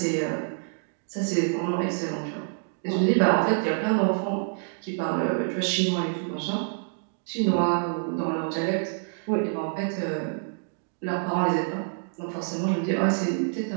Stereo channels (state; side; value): silent; left; digital silence